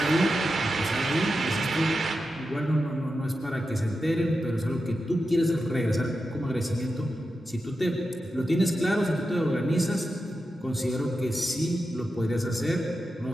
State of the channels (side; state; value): both; normal; correlation 0.90